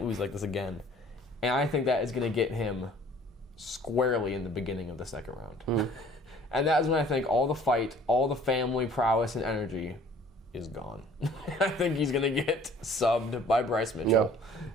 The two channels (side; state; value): both; normal; correlation 0.53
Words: lose like this again. And I think that is going to get him squarely in the beginning of the second round. And that is when I think all the fight, all the family prowess and energy is gone. I think he's going to get subbed by Bryce Mitchell